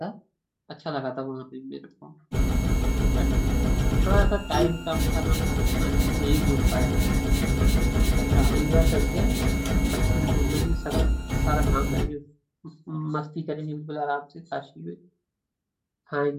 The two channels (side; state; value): both; identical; correlation 1.00